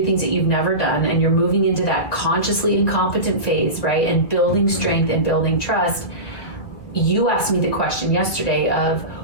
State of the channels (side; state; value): right; late; 2.0 ms